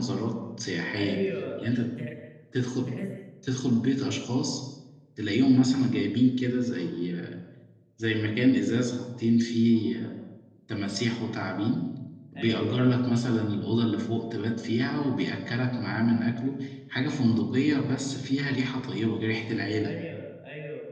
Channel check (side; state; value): both; identical; correlation 1.00